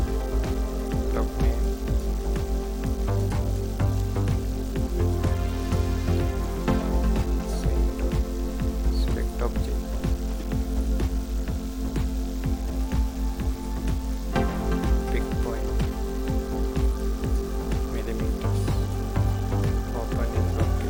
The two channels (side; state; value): both; identical; correlation 1.00